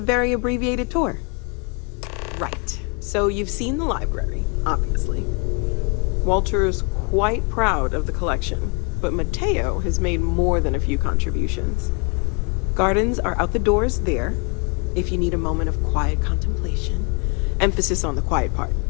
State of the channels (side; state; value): right; quieter; 35.0 dB